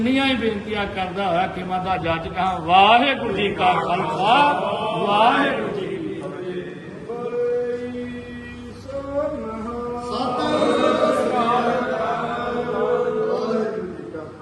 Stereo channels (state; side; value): identical; both; correlation 1.00